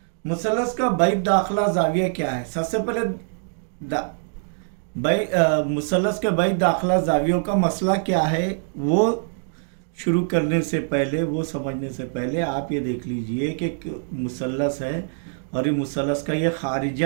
मुसल्लस का बैद दाखिला जाविया क्या है? सबसे पहले मुसल्लस के बैद दाखिला जावियों का मसला क्या है वो शुरू करने से पहले, वो समझने से पहले आप ये देख लीजिए कि मुसल्लस है और ये मुसल्लस का ये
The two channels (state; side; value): silent; left; digital silence